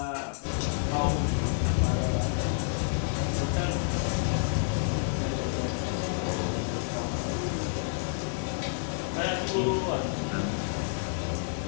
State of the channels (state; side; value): silent; right; digital silence